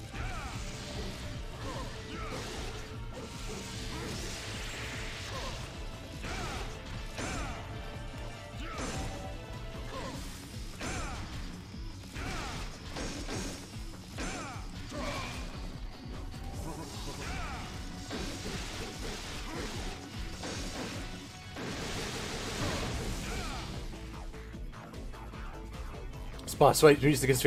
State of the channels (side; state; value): both; identical; correlation 1.00